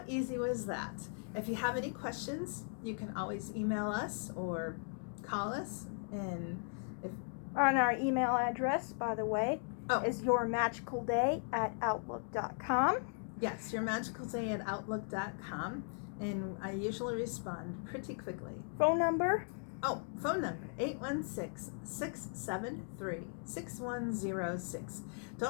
easy was that? If you have any questions, you can always email us or call us. And on our email address, by the way, is yourmagicalday@outlook.com. Yes, yourmagicalday@outlook.com. And I usually respond pretty quickly. Phone number? Phone number, 816-673-6106.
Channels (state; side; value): silent; right; 52 dB below the other